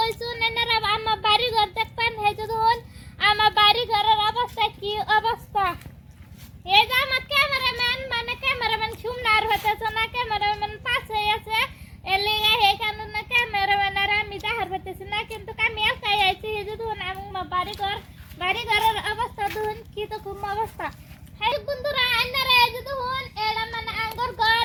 এনারা আমার বাড়ি ঘর দেখবেন হে যখন আমার বাড়ি ঘরের অবস্থা কি অবস্থা এই যে আমার ক্যামেরাম্যান সুমনার হতেছে না ক্যামেরাম্যান পাশে আছে এলিগা হে কারণে ক্যামেরাম্যান আর আমি দেখার হতেছি না কিন্তু আমি একাই আইছি হে যখন আমার বাড়ি ঘরের অবস্থা দেখুন কি তো খুব অবস্থা হে বন্ধুরা এনারা এই যে দেখুন এরা মানে আঙ্গুর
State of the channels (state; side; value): identical; both; correlation 1.00